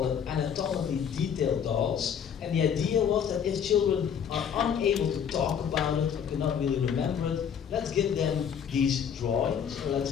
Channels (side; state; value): right; quieter; 7.8 dB